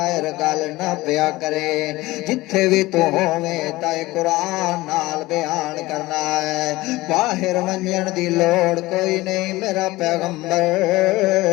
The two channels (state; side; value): quieter; right; 19.3 dB